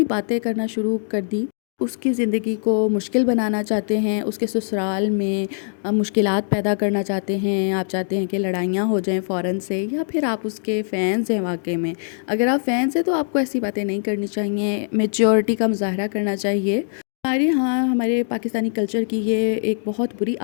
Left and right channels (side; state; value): right; silent; digital silence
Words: باتیں کرنا شروع کر دی۔ اس کی زندگی کو مشکل بنانا چاہتے ہیں، اس کے سسرال میں مشکلات پیدا کرنا چاہتے ہیں، آپ چاہتے ہیں کہ لڑائیاں ہو جائیں فوراً سے، یا پھر آپ اس کے فینس ہیں واقعے میں۔ اگر آپ فینس ہیں تو آپ کو ایسی باتیں نہیں کرنی چاہیے، میچورٹی کا مظاہرہ کرنا چاہیے۔ ہمارے پاکستانی کلچر کی یہ ایک بہت بری